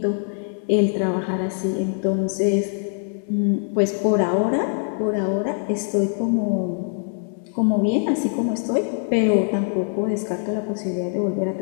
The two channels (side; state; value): right; silent; 63 dB below the other